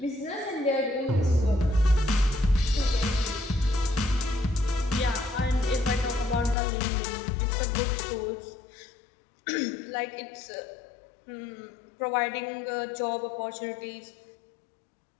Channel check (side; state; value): right; drops out; at 6.6 s